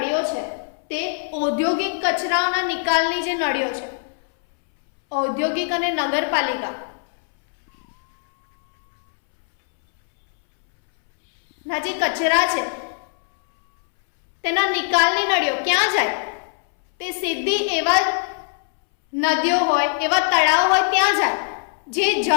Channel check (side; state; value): right; silent; 63 dB below the other